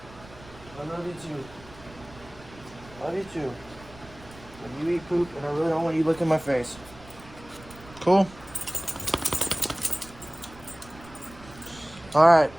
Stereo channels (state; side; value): noise; right; rumble, 20 dB below the sound